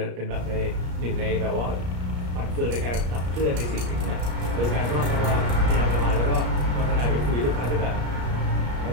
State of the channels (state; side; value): late; left; 34 ms